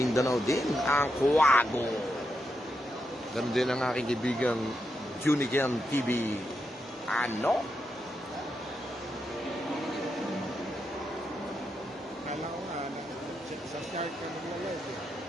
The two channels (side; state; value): both; normal; correlation 0.84